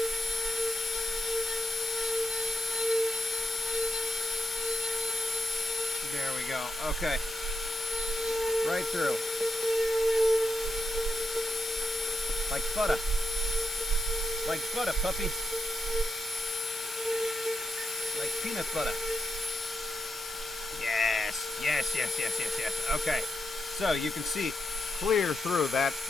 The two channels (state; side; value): normal; both; correlation 0.83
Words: There we go. Okay. Right through. Like butter. Like butter, puppy. Like peanut butter. Yes. Yes, yes, yes, yes, yes. Okay. So you can see clear through that